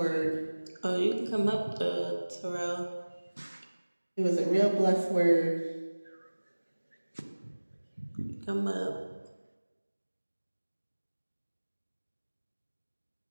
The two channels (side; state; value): both; inverted; correlation -1.00